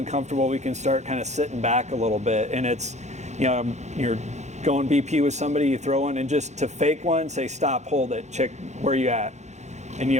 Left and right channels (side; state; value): left; late; 0.33 ms